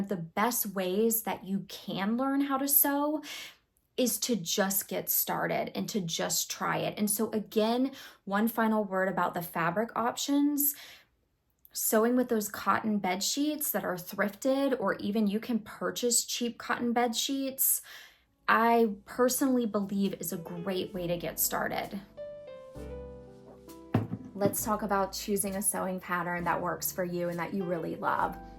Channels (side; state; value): both; identical; correlation 1.00